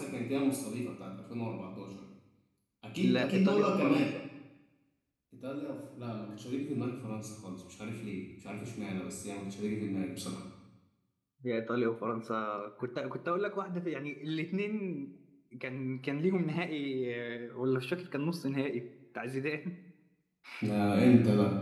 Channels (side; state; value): both; identical; correlation 1.00